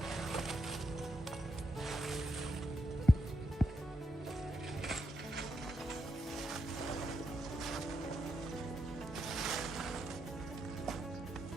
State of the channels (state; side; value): normal; both; correlation 0.82